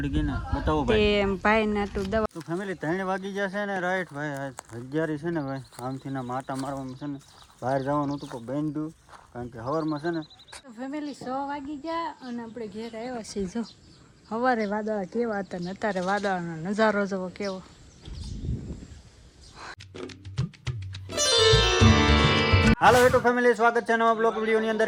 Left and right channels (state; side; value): identical; both; correlation 1.00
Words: ગઈ ને બતાવો ભાઈ તે ભાઈ ને તું દવા તો ફેમિલી 3 વાગી ગયા છે ને રાઈટ ભાઈ હજારી છે ને ભાઈ આમથી ના માટા મારવામાં છે ને બહાર જવાનું હતું પણ બેન્ડ્યું કારણ કે હવારમાં છે ને તો ફેમિલી 6 વાગી ગયા અને આપણે ઘેર આવ્યા છીએ જો સવારે વાદળા કેવા હતા ને અત્યારે વાદળનો નજારો જોવો કેવો હાલો યુટ્યુબ ફેમિલી સ્વાગત છે નવા બ્લોગ વિડીયોની અંદર